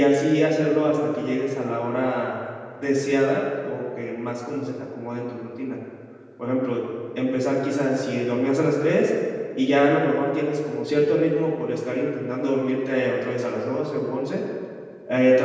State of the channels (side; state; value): both; identical; correlation 1.00